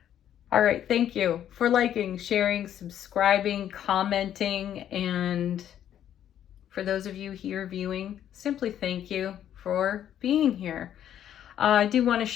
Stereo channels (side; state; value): right; quieter; 10.5 dB